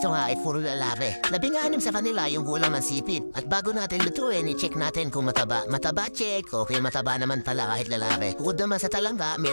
nga ay puro lalaki. 16 sa kanila yung kulang ng sipit. At bago natin lutuin, i-check natin kung mataba. Mataba check, okay mataba naman pala kahit lalaki. Bukod naman sa talangka,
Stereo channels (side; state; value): both; inverted; correlation -1.00